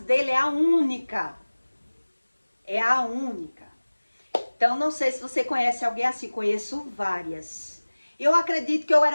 é a única. É a única. Então, não sei se você conhece alguém assim. Conheço várias. Eu acredito que eu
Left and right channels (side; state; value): both; inverted; correlation -1.00